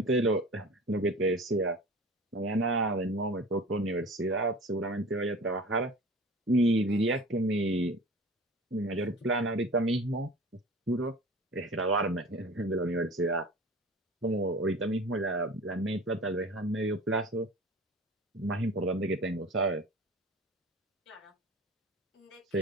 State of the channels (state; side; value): normal; both; correlation 0.39